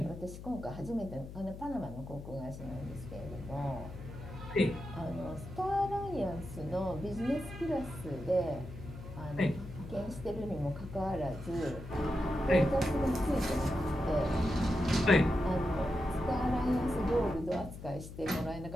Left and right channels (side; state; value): left; noise; hum, 12 dB below the sound